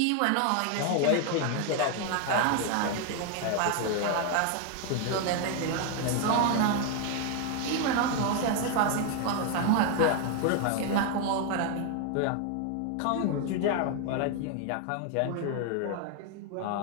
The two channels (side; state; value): both; different; correlation 0.01